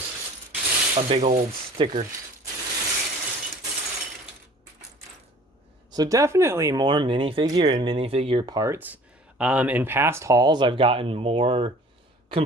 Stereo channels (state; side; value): normal; both; correlation 0.49